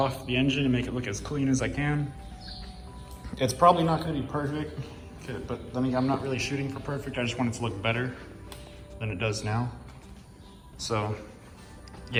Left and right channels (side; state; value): both; identical; correlation 1.00